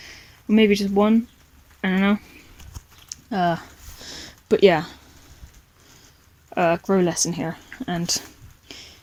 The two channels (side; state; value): both; identical; correlation 1.00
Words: maybe just 1. I don't know. But yeah, grow less in here and